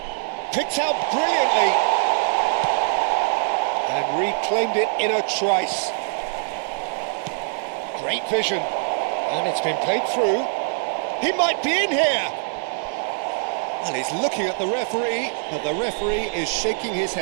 Picked out brilliantly. And reclaimed it in a trice. Great vision. And it's been played through. He might be in here. And he's looking at the referee, but the referee is shaking his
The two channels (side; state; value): left; silent; 63 dB below the other